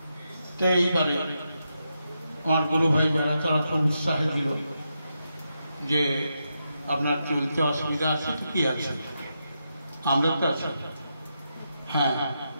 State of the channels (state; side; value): inverted; both; correlation -0.85